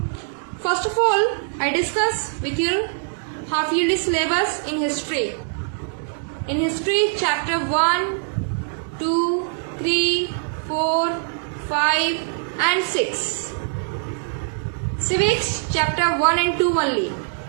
First of all, I discuss with you half yearly syllabus in history. In history, chapter 1, 2, 3, 4, 5 and 6. Civics, chapter 1 and 2 only.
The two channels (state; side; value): silent; left; digital silence